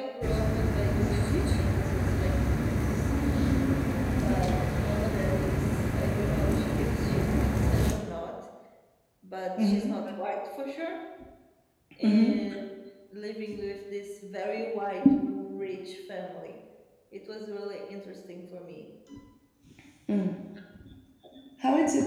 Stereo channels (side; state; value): both; identical; correlation 1.00